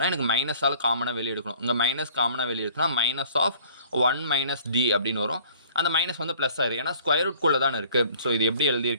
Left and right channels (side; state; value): both; inverted; correlation -0.53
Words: எனக்கு மைனஸால் காமனாக வெளியே எடுக்கணும். இங்கே மைனஸ் காமனாக வெளியே எடுத்தோன்னா -1 - d அப்படின்னு வரும். அந்த மைனஸ் வந்து ப்ளஸ் ஆயிரும், ஏன்னா ஸ்கொயர் ரூட்குள்ளே தானே இருக்குது. ஸோ இது எப்படி